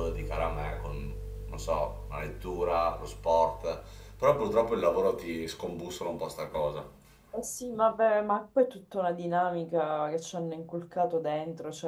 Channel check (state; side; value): identical; both; correlation 1.00